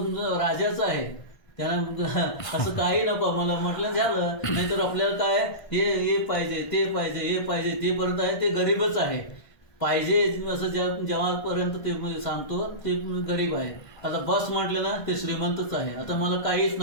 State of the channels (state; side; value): late; right; 1.5 ms